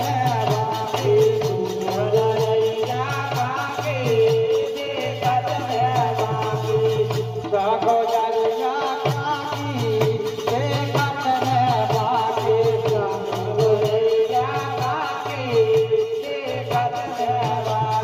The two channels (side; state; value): both; identical; correlation 1.00